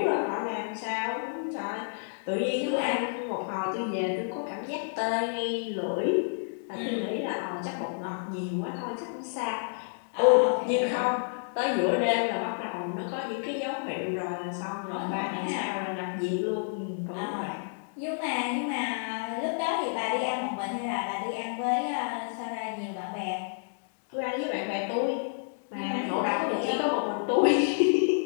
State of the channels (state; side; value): silent; right; digital silence